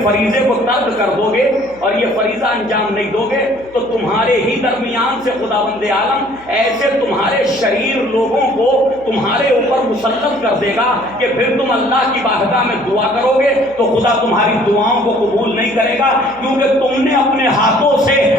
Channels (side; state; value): right; noise; hum, 25 dB below the sound